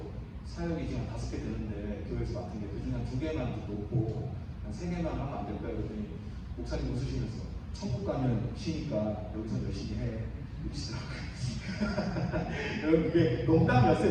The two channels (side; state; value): both; identical; correlation 1.00